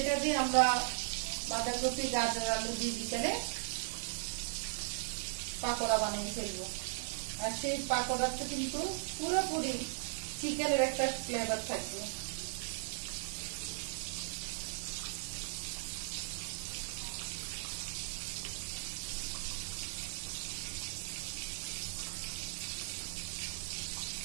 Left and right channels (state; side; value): silent; left; 53 dB below the other